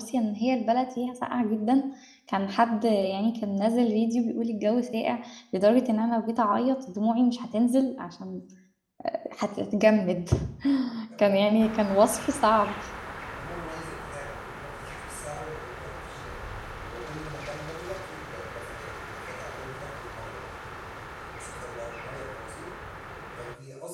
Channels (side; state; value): both; identical; correlation 1.00